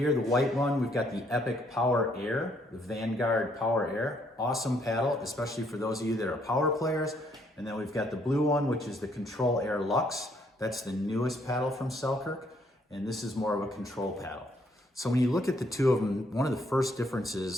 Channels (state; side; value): normal; both; correlation 0.69